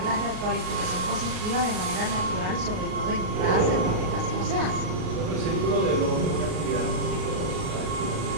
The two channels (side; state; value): left; late; 38 ms